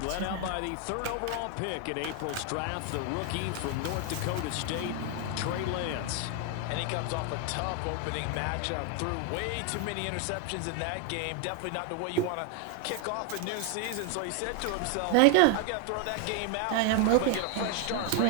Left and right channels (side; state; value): both; different; correlation 0.01